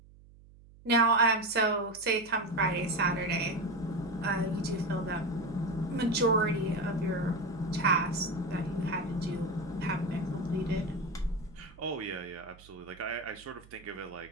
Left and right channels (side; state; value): right; noise; hum, 23 dB below the sound